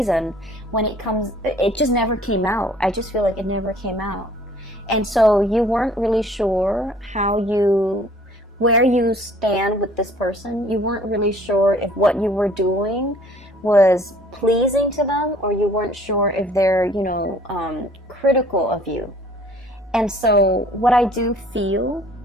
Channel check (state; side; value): normal; both; correlation 0.55